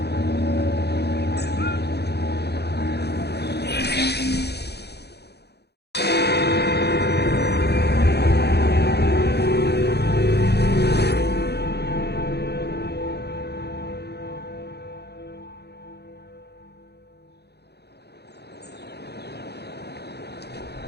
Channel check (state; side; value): late; right; 0.48 ms